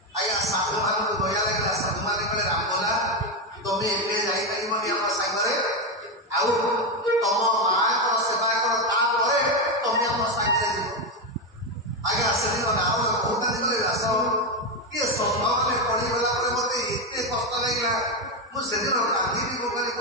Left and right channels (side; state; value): both; normal; correlation 0.09